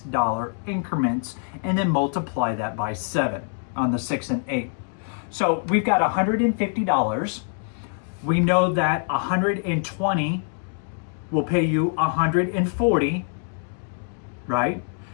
increments and then multiply that by 7 on the 6 and 8. So we've got $150. We know that 120 will pay you 140, right?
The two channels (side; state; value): right; silent; 62 dB below the other